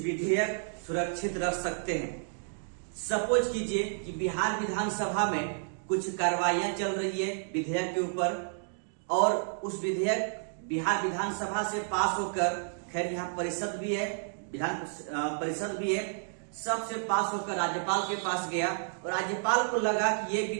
सुरक्षित रख सकते हैं। सपोज कीजिए कि बिहार विधानसभा में कुछ कार्रवाइयां चल रही है विधेयक के ऊपर, और उस विधेयक बिहार विधानसभा से पास होकर, खैर यहाँ परिषद भी है, विधान परिषद भी है, सबसे पास होकर राज्यपाल के पास गया, और राज्यपाल को लगा कि ये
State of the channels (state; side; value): silent; left; digital silence